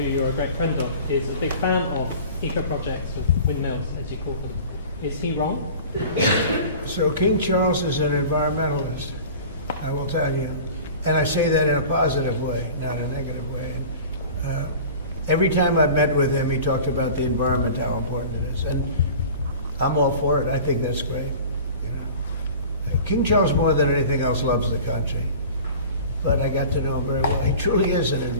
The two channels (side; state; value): both; inverted; correlation -0.40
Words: you're a great friend of, is a big fan of eco-projects, of windmills, as you call them. Is he wrong? So King Charles is an environmentalist, I will tell you. And I say that in a positive way, not a negative way. Every time I've met with him, he talked about the environment, how important it is. And I'm all for it. I think that's great. You know. King Charles, more than anything else, loves the country. But I got to know him very well. He truly is an